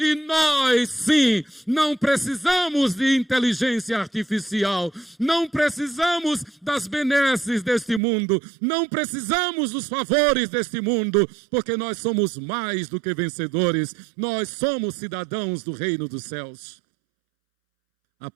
nós sim, não precisamos de inteligência artificial, não precisamos das benesses deste mundo, não precisamos dos favores deste mundo, porque nós somos mais do que vencedores, nós somos cidadãos do reino dos céus. A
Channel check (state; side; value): drops out; left; at 8.0 s